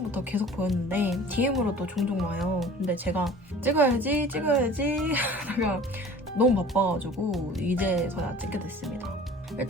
계속 보였는데 DM으로도 종종 와요. 근데 제가 찍어야지 하다가 너무 바빠가지고 이제서야 찍게 됐습니다.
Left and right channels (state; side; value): normal; both; correlation 0.45